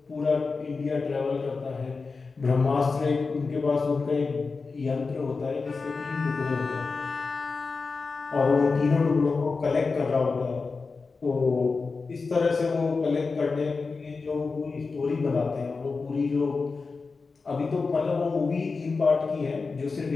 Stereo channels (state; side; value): quieter; right; 4.3 dB